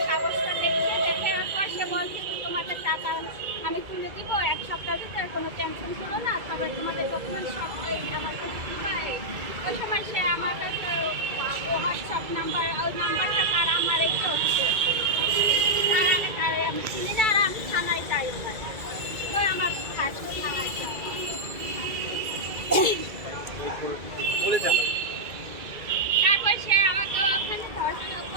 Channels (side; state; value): left; late; 2.3 ms